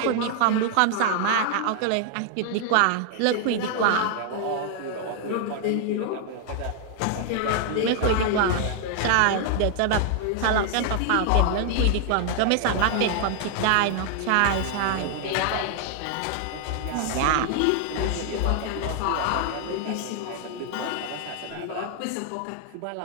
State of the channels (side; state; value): both; different; correlation 0.00